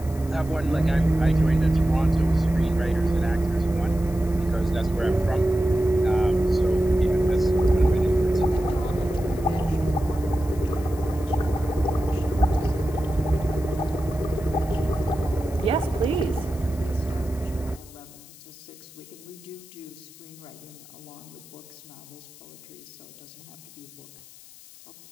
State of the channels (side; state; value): left; noise; hiss, 21 dB below the sound